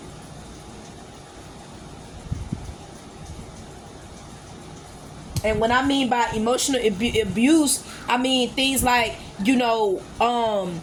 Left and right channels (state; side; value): identical; both; correlation 1.00